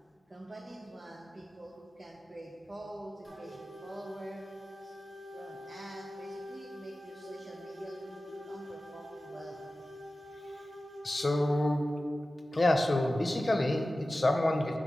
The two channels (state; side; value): normal; both; correlation 0.95